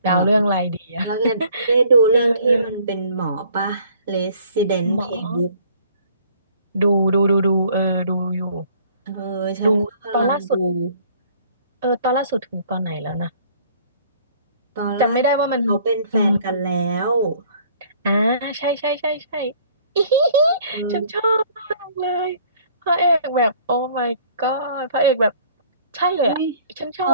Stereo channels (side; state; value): both; inverted; correlation -0.56